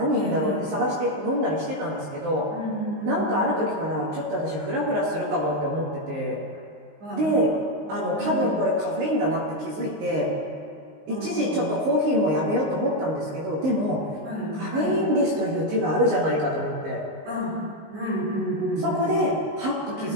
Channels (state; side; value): late; left; 19 ms